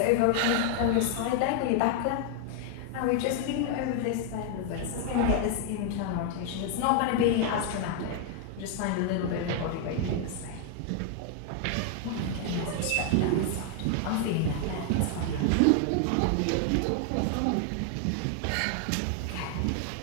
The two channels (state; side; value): different; both; correlation 0.00